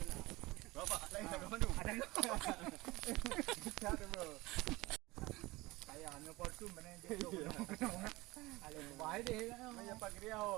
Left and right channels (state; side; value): quieter; left; 21.0 dB